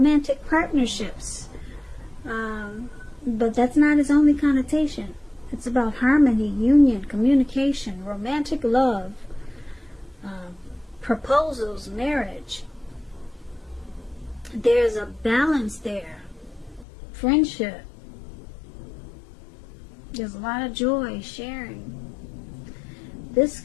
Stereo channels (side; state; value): right; drops out; at 16.9 s